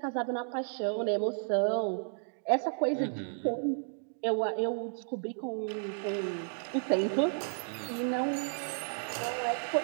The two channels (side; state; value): left; silent; digital silence